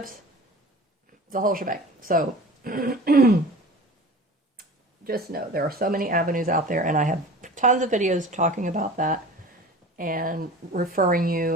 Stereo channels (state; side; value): normal; both; correlation 0.39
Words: the whole shebang. So just know there are so many avenues out there, and I have tons of videos talking about that and referring